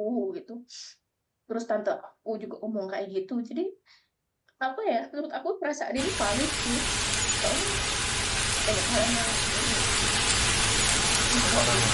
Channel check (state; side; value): identical; both; correlation 1.00